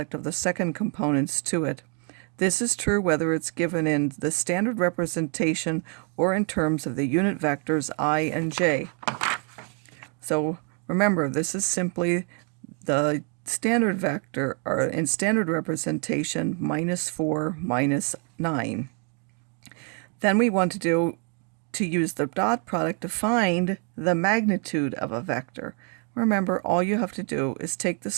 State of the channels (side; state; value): left; quieter; 39.7 dB